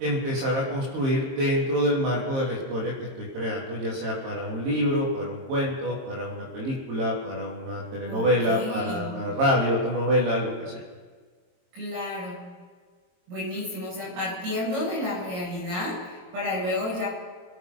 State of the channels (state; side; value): late; left; 23 ms